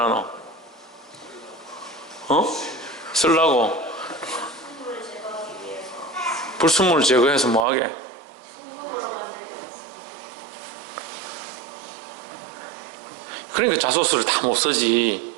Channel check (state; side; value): drops out; left; at 7.7 s